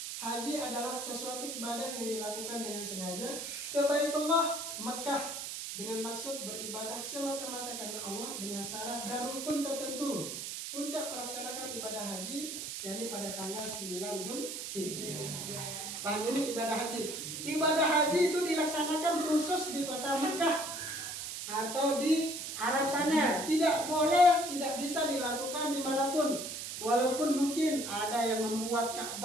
haji adalah sesuatu ibadah yang dilakukan dengan sengaja ke Baitullah Makkah dengan maksud beribadah semata-mata karena Allah dengan syarat dan rukun tertentu. Puncak melaksanakan ibadah haji yakni pada tanggal 9 Zulhijjah. Paham ini ibadah haji? Ibadah haji itu dilaksanakan khusus di kota Mekah atau di Arab sana. Tidak boleh, tidak bisa dilakukan dimanapun. Walaupun mungkin ada yang membuat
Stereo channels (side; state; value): right; noise; hiss, 6 dB below the sound